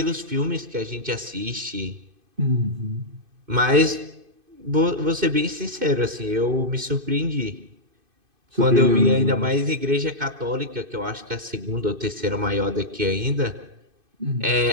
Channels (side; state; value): left; late; 2.5 ms